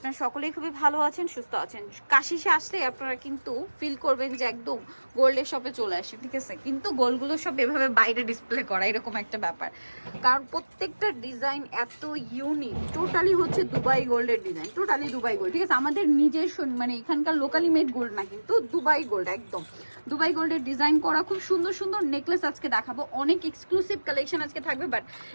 সকলেই খুবই ভালো আছেন, সুস্থ আছেন। কাশিসে আসলে আপনারা কিন্তু ফিল করবেন যে একদম গোল্ডের শপে চলে আসি, ঠিক আছে? কিন্তু গোল্ডগুলো সব এভাবে বাইরে ডিসপ্লে করা এরকম একটা ব্যাপার, কারণ প্রত্যেকটা ডিজাইন এত ইউনিক। টোটালি হচ্ছে দুবাই গোল্ডের ডিজাইন, টোটালি দুবাই গোল্ড, ঠিক আছে? আমাদের নিজস্ব মানে এখানকার লোকালি মেড গোল্ড না, কিন্তু দুবাই গোল্ড, একদম দুবাই গোল্ডের ডিজাইন করা খুব সুন্দর সুন্দর নেকলেস আজকে দেখাবো। অনেক এক্সক্লুসিভ কালেকশন আজকে থাকবে, বাট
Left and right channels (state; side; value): inverted; both; correlation -1.00